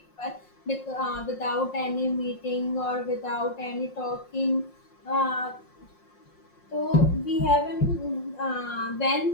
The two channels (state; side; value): late; right; 5.6 ms